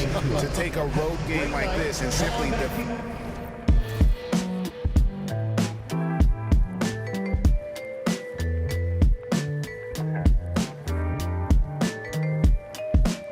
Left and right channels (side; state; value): both; identical; correlation 1.00